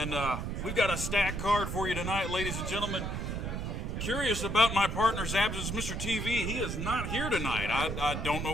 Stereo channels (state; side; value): noise; right; rumble, 3 dB below the sound